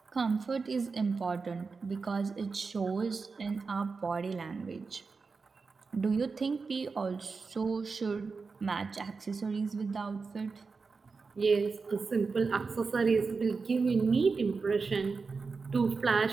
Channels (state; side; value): quieter; left; 4.6 dB